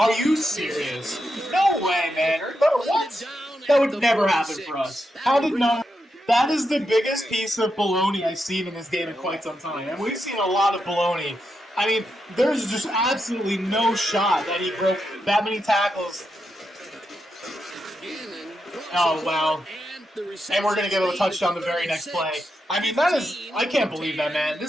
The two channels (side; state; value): both; normal; correlation 0.85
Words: Are you serious? No way, man. What? That would never happen for us. How did no? That is the biggest piece of baloney I've seen in this game in quite some time. And we've seen a lot of baloney. I mean, there's just absolutely no shot that he broke that many tackles. Oh, wow. And we're going to get a touchdown the very next play. I mean, I can't believe that, man.